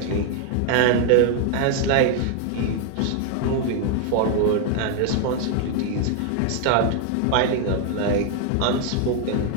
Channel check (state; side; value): different; both; correlation 0.00